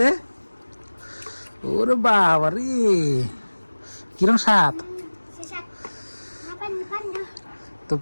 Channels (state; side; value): inverted; both; correlation -1.00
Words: ওরে বাবা রে, কিরম স্বাদ। তো